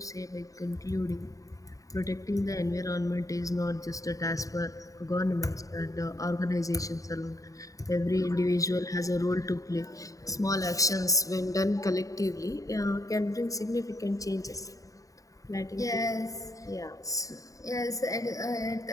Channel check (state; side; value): late; right; 0.16 ms